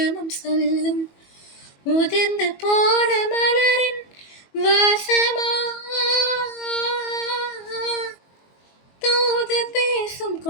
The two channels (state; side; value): late; right; 22 ms